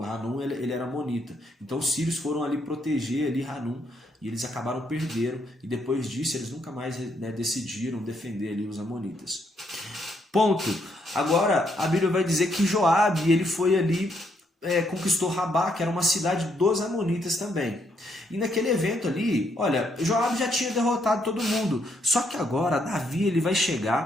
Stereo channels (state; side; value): normal; both; correlation 0.75